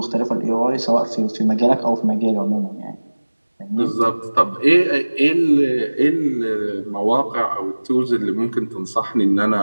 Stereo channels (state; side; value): inverted; both; correlation -1.00